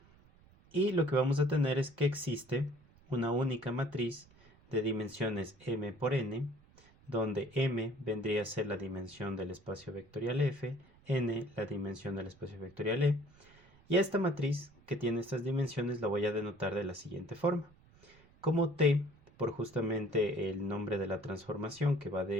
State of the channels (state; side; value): noise; right; rumble, 27 dB below the sound